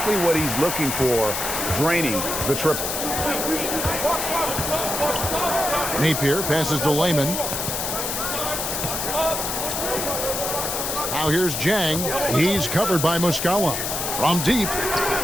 what he's looking for, draining the triple. Napier passes to Layman. Now here's Jang. He's covered by Muscala. From deep.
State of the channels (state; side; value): noise; left; hiss, 2 dB below the sound